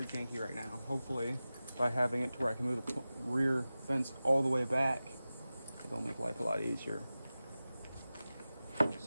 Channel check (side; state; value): both; inverted; correlation -0.96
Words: janky right now. Hopefully, by having it to where I can move the rear fence all the way back, it'll make life a lot easier.